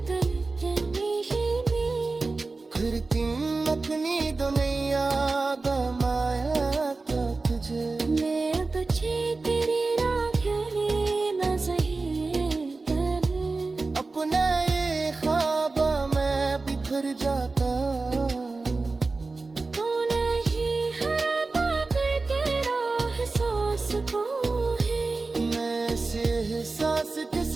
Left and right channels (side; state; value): left; quieter; 3.7 dB